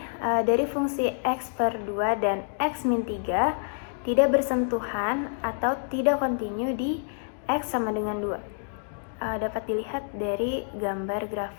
dari fungsi x per 2 dan x min 3 tidak bersentuhan atau tidak kontinu di x sama dengan 2. Dapat dilihat dari gambar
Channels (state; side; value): silent; right; digital silence